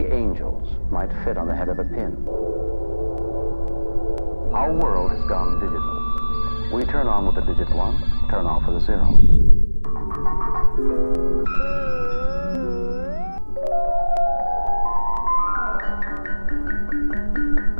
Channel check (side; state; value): both; inverted; correlation -1.00